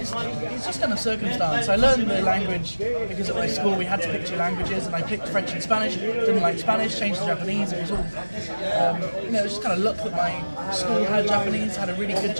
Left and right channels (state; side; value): inverted; both; correlation -1.00